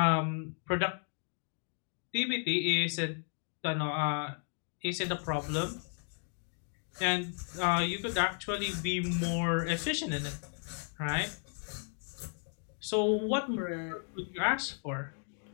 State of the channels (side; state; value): right; silent; 55 dB below the other